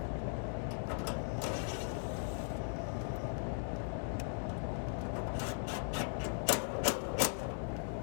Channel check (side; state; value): right; silent; digital silence